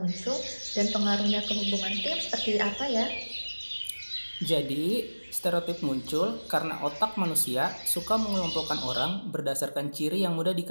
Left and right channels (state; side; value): inverted; both; correlation -1.00